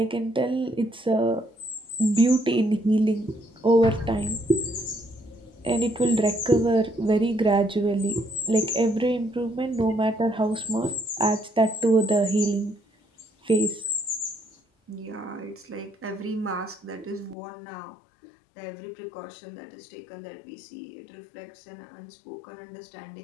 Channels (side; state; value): right; drops out; at 17.4 s